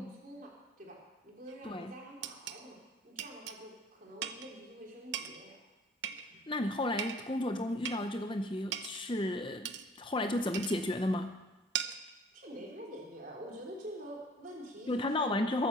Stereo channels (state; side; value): normal; both; correlation 0.53